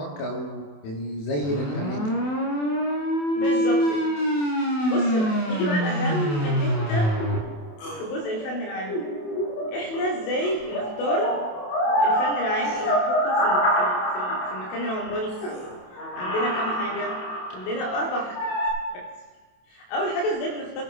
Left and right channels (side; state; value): right; late; 27 ms